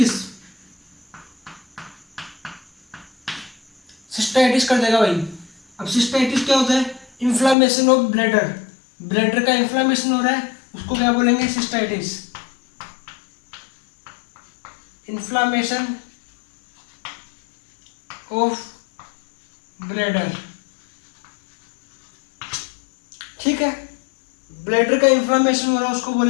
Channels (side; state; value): right; drops out; at 7.6 s